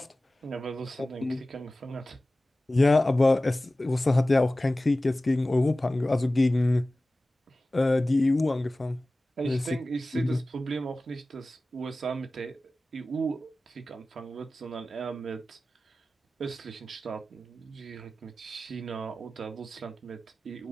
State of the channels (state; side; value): normal; both; correlation 0.97